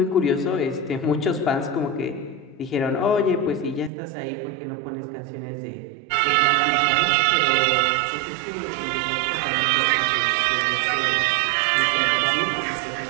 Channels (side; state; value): left; drops out; at 3.9 s